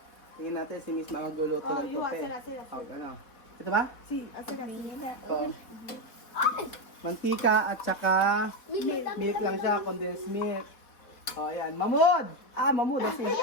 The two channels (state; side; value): late; right; 4.1 ms